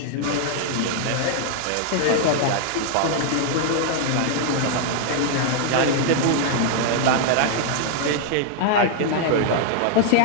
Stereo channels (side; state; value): both; different; correlation 0.00